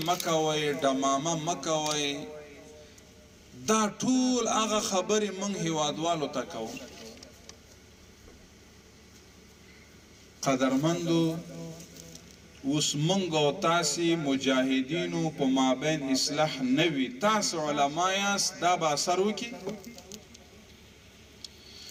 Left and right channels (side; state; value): both; identical; correlation 1.00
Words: مکوی دماما مکوی دا طول آغا خبری منگ حوادوالو تاکو قدرمندو اس منگو تاسی مجاہدینو پا مابین اصلاح نوی تاس علمایاس دا با سرو کی